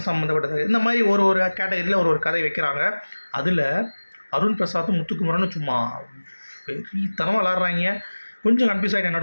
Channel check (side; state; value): both; inverted; correlation -1.00